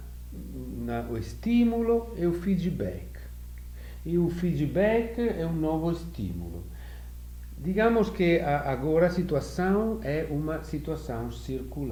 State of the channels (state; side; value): identical; both; correlation 1.00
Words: o estímulo e o feedback. E o feedback é um novo estímulo. Digamos que agora a situação é uma situação